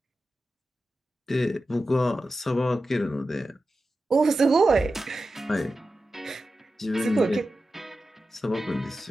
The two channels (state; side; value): normal; both; correlation 0.92